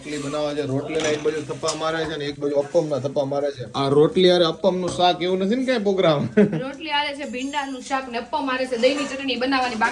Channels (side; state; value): both; identical; correlation 1.00